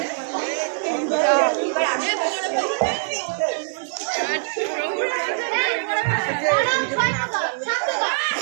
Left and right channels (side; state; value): left; silent; digital silence